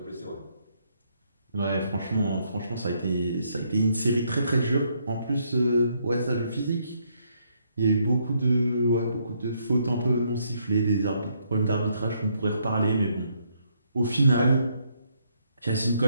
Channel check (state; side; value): inverted; both; correlation -0.73